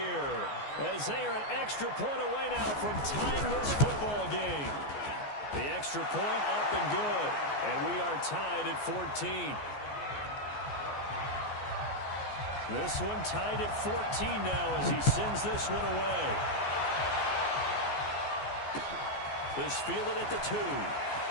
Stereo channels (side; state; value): right; late; 14 ms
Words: as they are an extra point away now from tying this football game. The extra point up and good, and we are tied at 14. This one tied at 14 now as he sends this one away. This fielded at the 2.